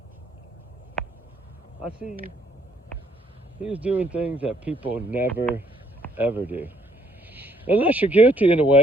I see you. He was doing things that people never, ever do. Unless you're guilty in a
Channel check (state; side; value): normal; both; correlation 0.67